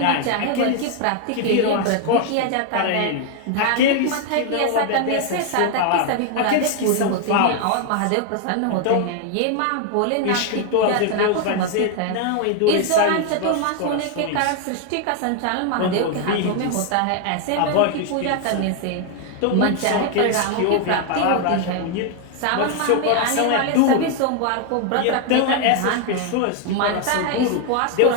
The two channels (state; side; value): different; both; correlation 0.00